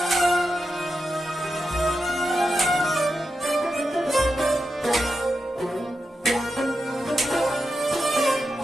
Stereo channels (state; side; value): normal; both; correlation 0.88